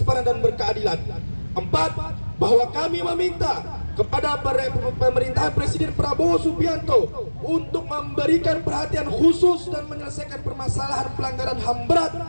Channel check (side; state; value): both; inverted; correlation -1.00